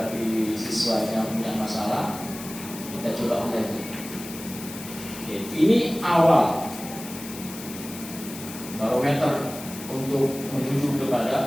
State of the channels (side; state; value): left; noise; hiss, 12 dB below the sound